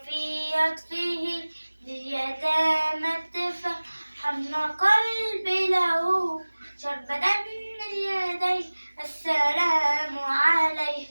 عطفه لليتامى الدفا حن قلبي له شربة من يديه السلام عليه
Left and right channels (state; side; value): inverted; both; correlation -1.00